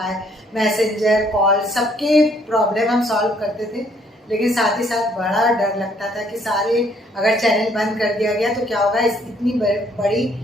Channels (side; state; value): both; normal; correlation 0.65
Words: मैसेंजर, कॉल, सबके प्रॉब्लम हम सॉल्व करते थे। लेकिन साथ ही साथ बड़ा डर लगता था कि सारे अगर चैनल बंद कर दिया गया तो क्या होगा, इतनी बड़ी